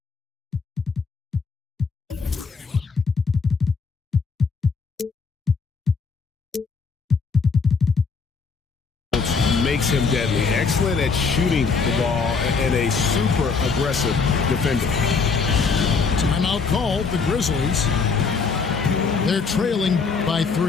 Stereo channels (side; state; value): right; quieter; 5.0 dB